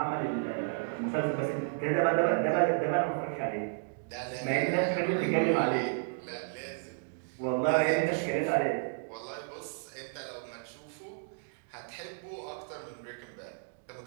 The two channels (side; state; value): left; silent; digital silence